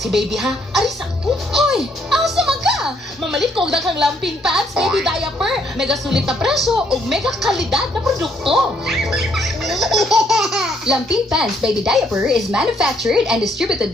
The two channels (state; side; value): normal; both; correlation 0.69